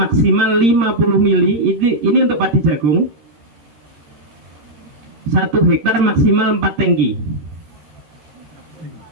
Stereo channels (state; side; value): late; left; 13 ms